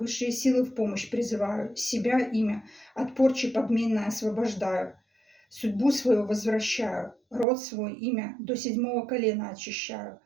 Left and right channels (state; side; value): drops out; left; at 7.5 s